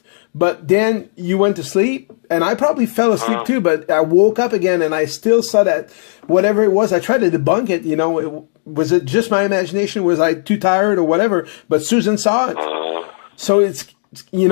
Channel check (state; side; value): silent; right; 68 dB below the other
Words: But then you went to sleep, and I probably fell asleep too, but I woke up again, and I still saw that, whatever it was, I tried to debunk it, you know, was it just my imagination? Was I too tired or whatever? But Susan saw it. So it's, you